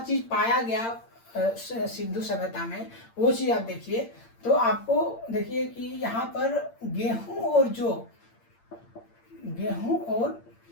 पाया गया सिंधु सभ्यता में, वो चीज आप देखिए। तो आपको देखिए कि यहाँ पर गेहूं और जौ, गेहूं और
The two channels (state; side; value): late; right; 8.7 ms